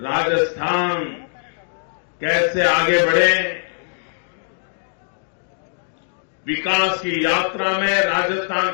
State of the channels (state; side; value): silent; right; digital silence